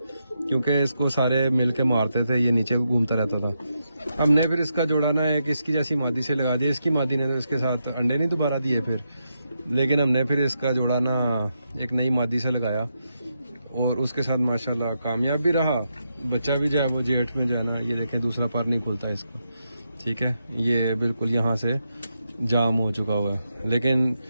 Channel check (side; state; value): both; inverted; correlation -0.84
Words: क्योंकि इसको सारे मिल के मारते थे, ये नीचे घूमता रहता था। हमने फिर इसका जोड़ा ना एक इसकी जैसी मादी से लगा दिया। इसकी मादी ने तो इसके साथ अंडे नहीं दोबारा दिए फिर, लेकिन हमने फिर इसका जोड़ा ना एक नई मादी से लगाया और उसके साथ माशाल्लाह कामयाब भी रहा। बच्चा भी जो है वो जेठ में जाना, ये देखें दूसरा पर नहीं खुलता इसका, ठीक है। ये बिल्कुल यहाँ से जाम हो चुका हुआ है, लेकिन